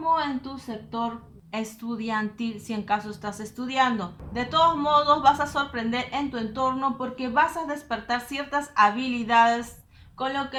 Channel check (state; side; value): identical; both; correlation 1.00